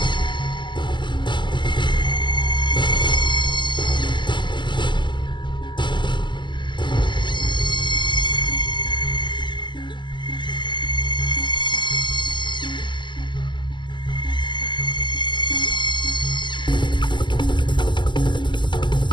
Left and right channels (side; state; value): right; late; 0.22 ms